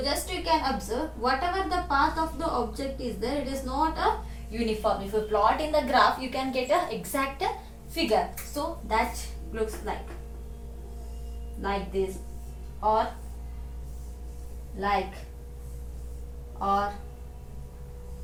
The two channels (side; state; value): both; identical; correlation 1.00